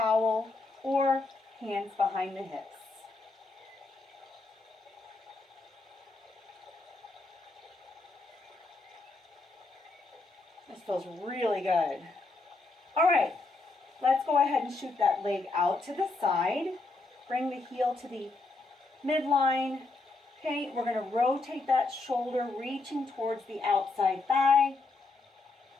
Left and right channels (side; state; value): right; quieter; 3.5 dB